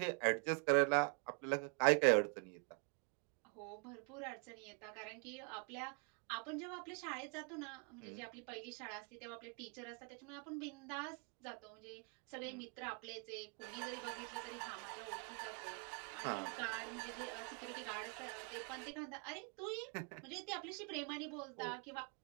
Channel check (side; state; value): left; quieter; 38.1 dB